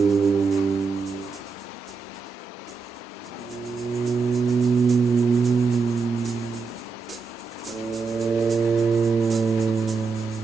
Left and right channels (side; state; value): left; quieter; 4.9 dB